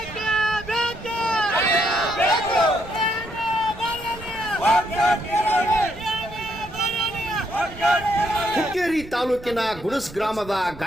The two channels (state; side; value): noise; right; rumble, 16 dB below the sound